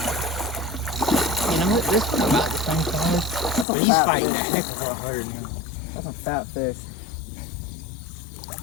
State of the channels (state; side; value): drops out; right; at 3.7 s